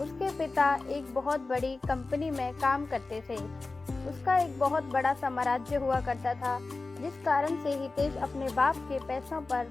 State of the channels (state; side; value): quieter; right; 3.5 dB